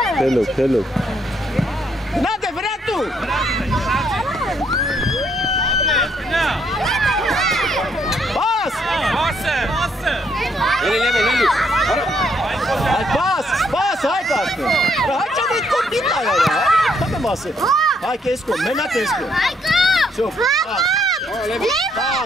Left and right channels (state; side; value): normal; both; correlation 0.71